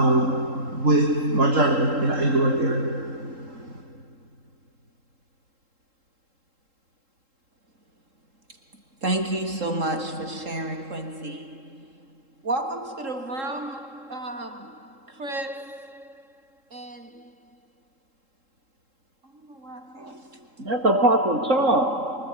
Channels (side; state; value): left; late; 3.7 ms